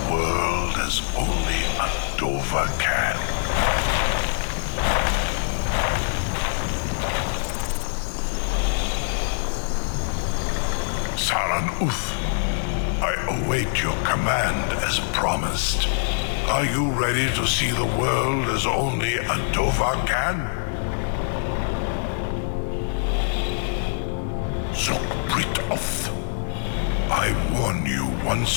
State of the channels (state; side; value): silent; right; digital silence